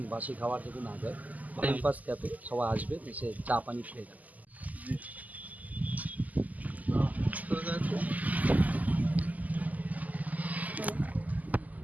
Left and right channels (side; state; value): left; late; 0.079 ms